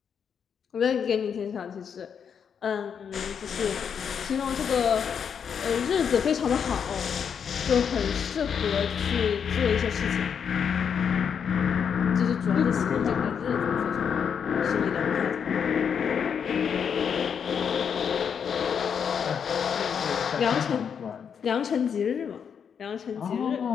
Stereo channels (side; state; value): right; quieter; 7.3 dB